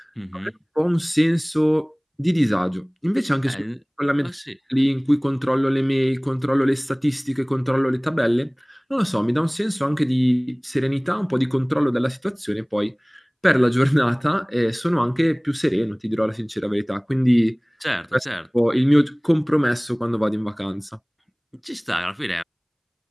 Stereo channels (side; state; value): both; identical; correlation 1.00